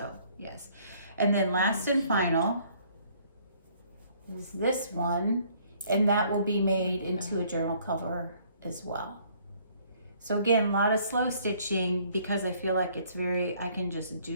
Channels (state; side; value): inverted; both; correlation -0.61